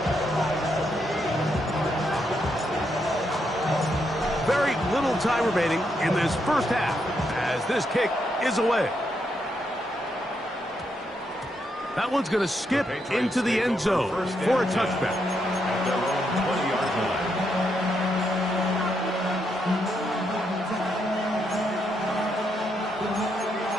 Very little time remaining in this first half as this kick is away. That one's going to skip into the end zone for a touchback. At their own 20-yard line.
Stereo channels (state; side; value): normal; both; correlation 0.79